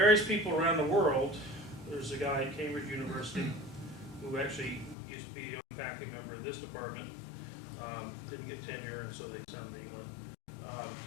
people around the world, there's a guy at Cambridge University who actually used to be a faculty member in this department, didn't get tenure, and so they sent him to England.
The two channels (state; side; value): drops out; right; at 5.0 s